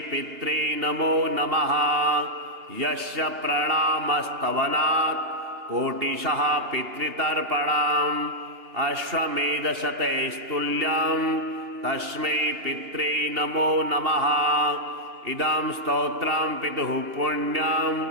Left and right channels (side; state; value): left; late; 2.8 ms